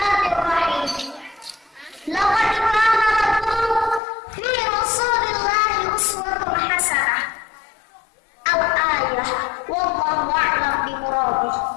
Laqad kana lakum fi Rasulillahi uswatun hasanah. Al-ayah wallahu a'lam bimuradih.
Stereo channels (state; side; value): drops out; right; at 4.0 s